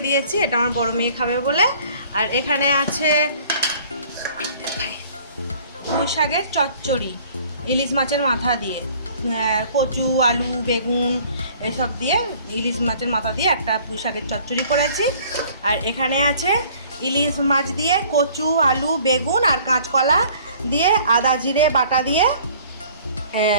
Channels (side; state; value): both; inverted; correlation -0.53